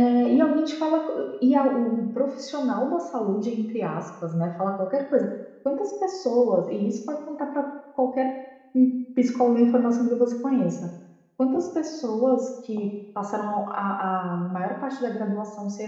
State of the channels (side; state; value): both; identical; correlation 1.00